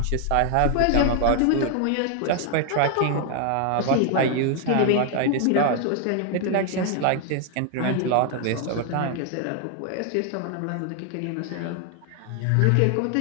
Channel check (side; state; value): both; different; correlation 0.00